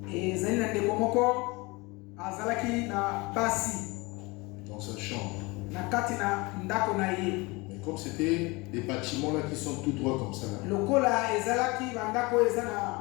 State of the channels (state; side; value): quieter; right; 25.0 dB